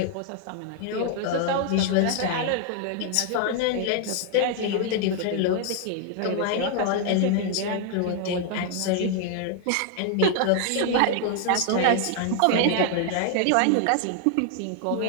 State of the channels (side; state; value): both; different; correlation 0.00